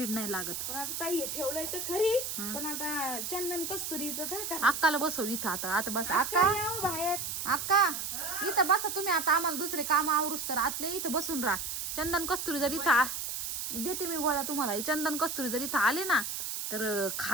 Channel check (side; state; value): right; noise; hiss, 4 dB below the sound